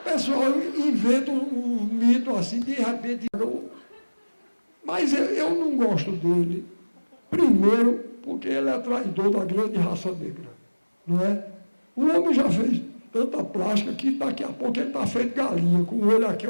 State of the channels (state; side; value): inverted; both; correlation -1.00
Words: inventa um mito assim, de repente. Mas eu não gosto dele. Primeiro, porque ele é traidor da grande raça negra. Não é? O homem já fez tanta plástica que daqui a pouco ele está feito galinha, com o olho aqui,